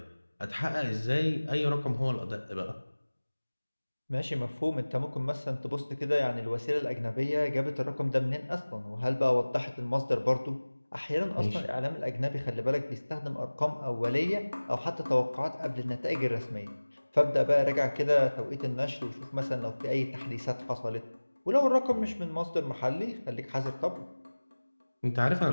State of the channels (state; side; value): inverted; both; correlation -1.00